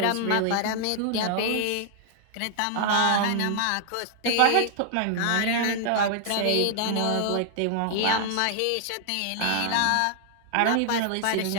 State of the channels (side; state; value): both; different; correlation 0.00